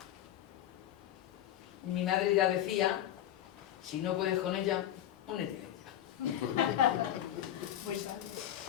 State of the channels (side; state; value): right; quieter; 11.9 dB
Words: Mi madre ya decía, si no puedes con ella, únete a ella. Muy bien.